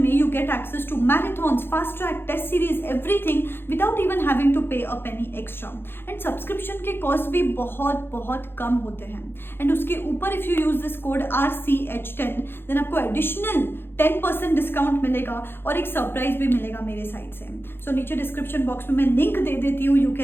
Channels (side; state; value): right; late; 0.11 ms